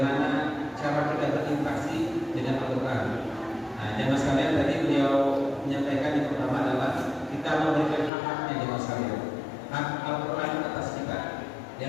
cara kita berinteraksi dengan Al-Quran. Nah, jamaah sekalian, tadi beliau menyampaikan yang pertama adalah kita memberikan hak-haknya jamaah sekalian. Hak Al-Quran atas kita. Di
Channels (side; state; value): right; drops out; at 8.1 s